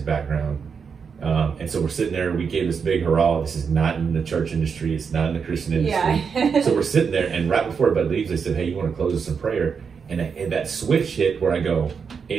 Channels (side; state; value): left; quieter; 6.1 dB